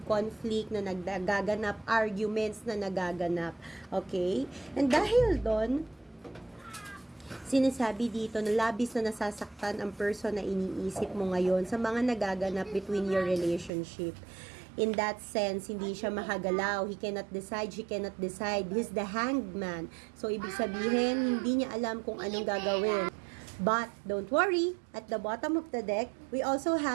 conflict na nagaganap, arguments na nagaganap. Okay? And dahil doon, sinasabi dito na labis na nasasaktan ang person na iniisip mo ngayon sa mga nagaganap between your relationship. In that sense, hindi siya makagalaw. He cannot decide, she cannot decide. He's the hanged man. So, ibig sabihin, hindi niya alam kung anong gagawin. But, don't worry, at the bottom of the deck, we also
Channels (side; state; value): left; drops out; at 13.7 s